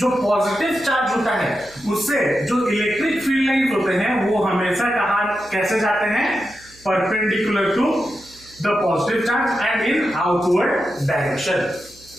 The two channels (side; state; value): right; noise; hum, 26 dB below the sound